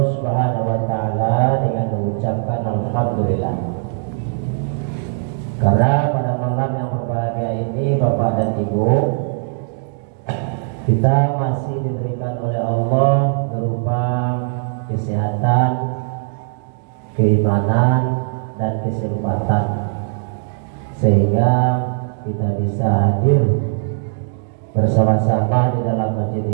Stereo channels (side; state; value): left; silent; digital silence